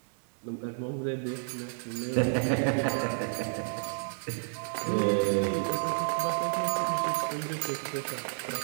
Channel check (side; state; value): left; silent; digital silence